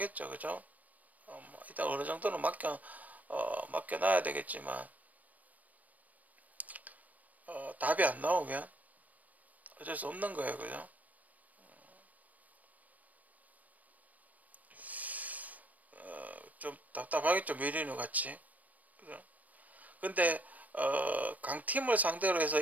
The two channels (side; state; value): left; late; 0.074 ms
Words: 그죠? 뭐 일단 어느 정도는 맡겨놔야 되겠지만 답이 안 나오면 어쩔 수 없는 거예요, 그죠? 좀 답답하겠죠, 메리노 같이, 그죠? 근데 강팀을 상대로 해서